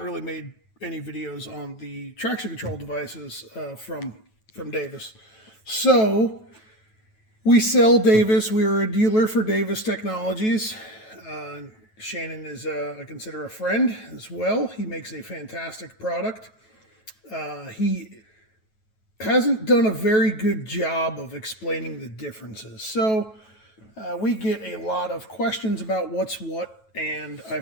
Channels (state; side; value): late; right; 9.2 ms